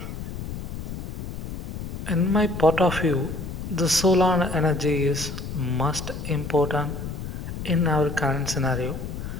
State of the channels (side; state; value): left; noise; rumble, 7 dB below the sound